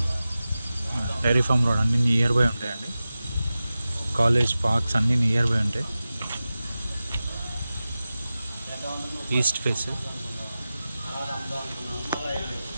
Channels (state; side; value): inverted; both; correlation -0.95